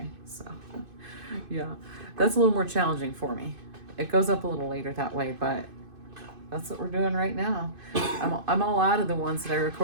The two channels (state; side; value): late; left; 2.5 ms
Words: So, yeah, that's a little more challenging for me. It goes up a little later that way, but that's what we're doing right now. I'm all out of the ones that I